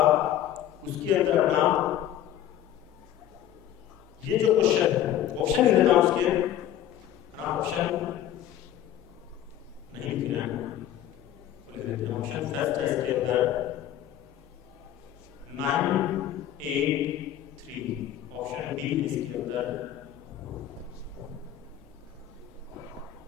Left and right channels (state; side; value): quieter; right; 11.5 dB